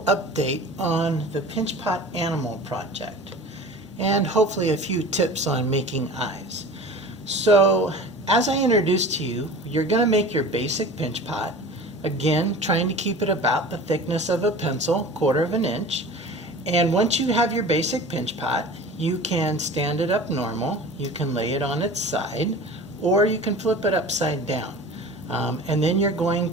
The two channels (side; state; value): both; normal; correlation 0.39